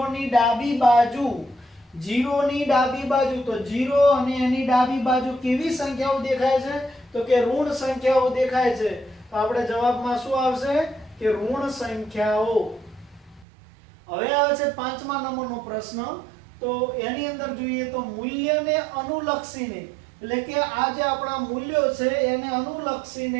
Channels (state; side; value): drops out; left; at 13.5 s